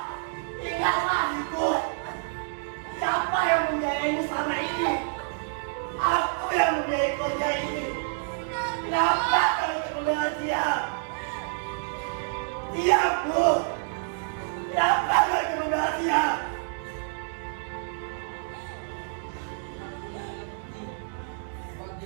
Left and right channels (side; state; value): left; silent; digital silence